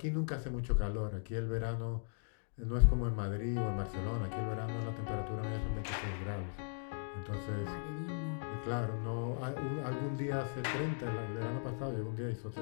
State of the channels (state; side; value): silent; right; digital silence